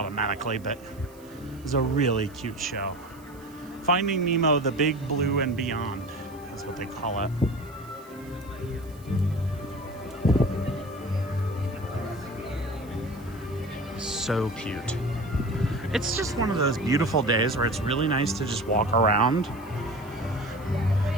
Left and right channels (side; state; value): right; noise; hiss, 26 dB below the sound